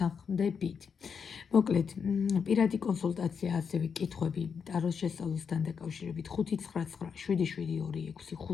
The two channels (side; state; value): right; quieter; 6.4 dB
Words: მოკლედ, პირადი კონსულტაცია, ასევე კითხვები ტაროს შესწავლასთან დაკავშირებით 5997726